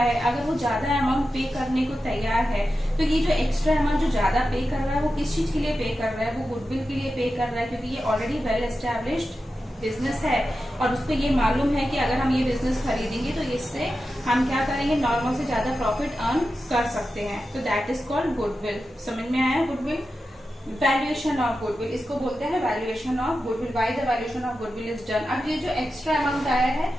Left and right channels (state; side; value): normal; both; correlation 0.91